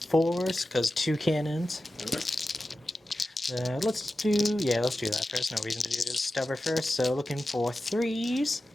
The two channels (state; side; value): normal; both; correlation 0.93